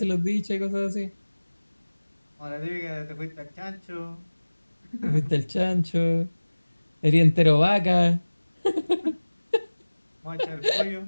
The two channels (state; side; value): inverted; both; correlation -1.00